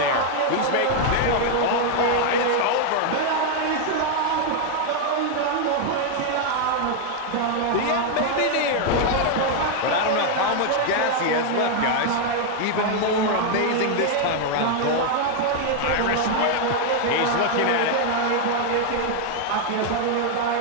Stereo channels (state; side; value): different; both; correlation 0.00